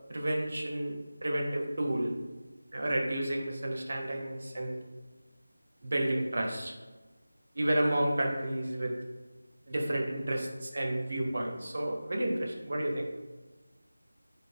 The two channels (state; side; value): inverted; both; correlation -0.96